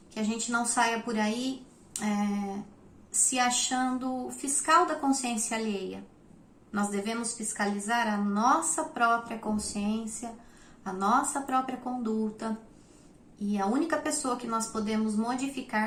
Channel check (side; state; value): both; identical; correlation 1.00